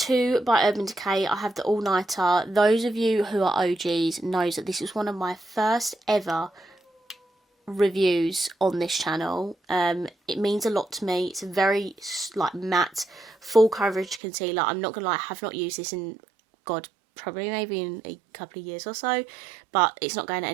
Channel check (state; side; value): drops out; left; at 14.2 s